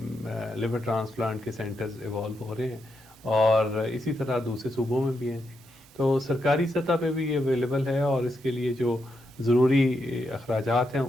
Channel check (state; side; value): normal; both; correlation 0.83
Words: لیور ٹرانسپلانٹ کے سینٹرز ایوالو ہو رہے ہیں، اور اسی طرح دوسرے صوبوں میں بھی ہیں جی۔ تو سرکاری سطح پہ بھی یہ اویلیبل ہے، اور اس کے لیے جو ضروری اخراجات ہیں